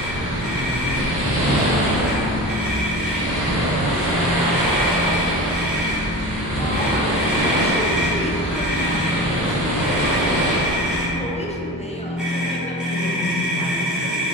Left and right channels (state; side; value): normal; both; correlation 0.32